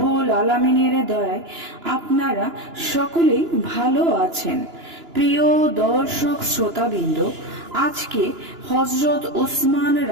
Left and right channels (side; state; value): left; late; 2.9 ms